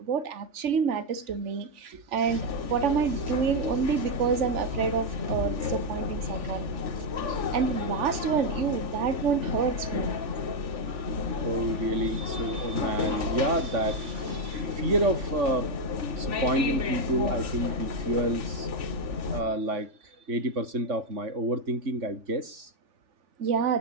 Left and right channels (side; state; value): left; late; 3.4 ms